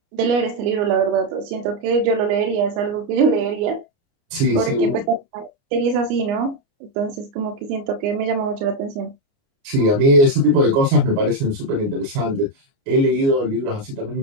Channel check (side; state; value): left; late; 29 ms